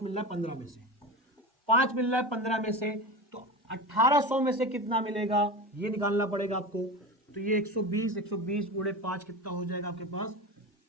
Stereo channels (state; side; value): normal; both; correlation 0.26